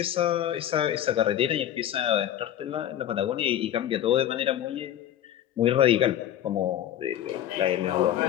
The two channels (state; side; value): quieter; right; 11.4 dB